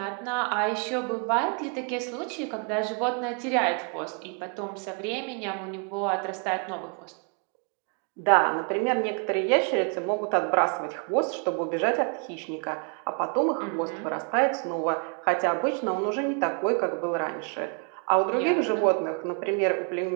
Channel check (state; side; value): quieter; left; 39.9 dB